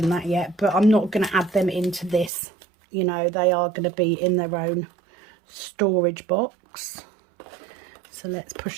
that yet. But I'm not going to add them into this, you know, they are going to be in their own storage box. So let's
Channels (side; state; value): left; drops out; at 2.3 s